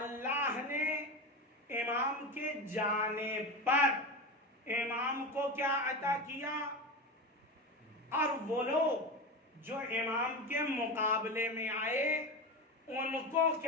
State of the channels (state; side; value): normal; both; correlation 0.21